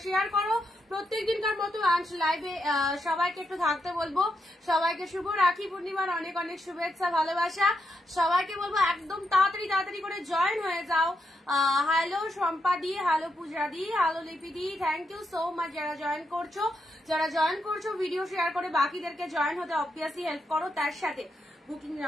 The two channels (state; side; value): normal; both; correlation 0.82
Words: শেয়ার করো প্রত্যেক দিনকার মতো। অ্যান্ড লাইভে সবাইকে একটু থাকতে বলবো। সবাইকে শুভ রাখি পূর্ণিমার অনেক অনেক শুভেচ্ছা, ভালোবাসা। সবাইকে বলবো একদম তাড়াতাড়ি তাড়াতাড়ি করে জয়েন হয়ে যাও। হ্যালো শম্পা দি, হ্যালো পূজা দি, হ্যালো লিপি দি, থ্যাংক ইউ সো মাচ যারা জয়েন করছো। যারা জয়েন করছো ভিডিও শেয়ার করে বাকিদেরকে জয়েন হতে অবভিয়াসলি হেল্প করো। তার সাথে বুকিং